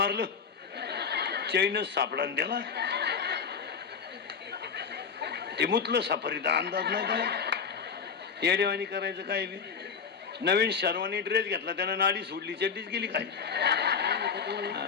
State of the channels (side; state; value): right; quieter; 6.3 dB